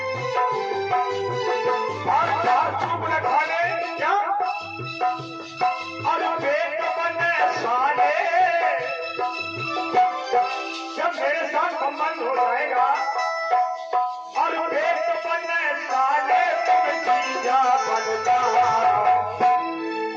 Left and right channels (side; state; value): both; identical; correlation 1.00